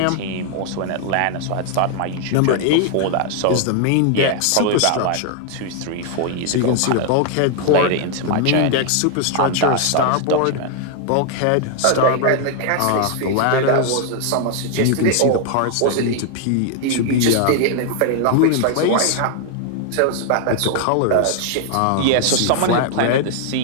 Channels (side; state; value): both; different; correlation 0.00